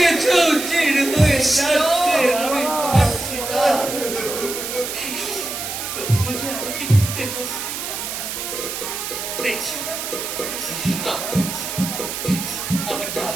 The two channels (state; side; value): noise; right; hiss, 5 dB below the sound